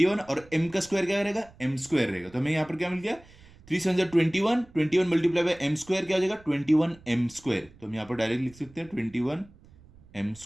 और m का स्क्वायर क्या रहेगा, m स्क्वायर रहेगा। तो हमें यहाँ पर क्या मिल गया 3 7 ज़र 21, 21 मल्टीप्लाई बाय m स्क्वायर क्या हो जाएगा 21 m स्क्वायर। तो हम यहाँ पर डायरेक्ट लिख सकते हैं 21 m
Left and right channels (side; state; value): right; noise; rumble, 24 dB below the sound